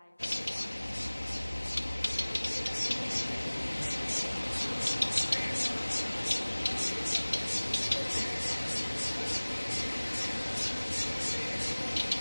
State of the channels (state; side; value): inverted; both; correlation -1.00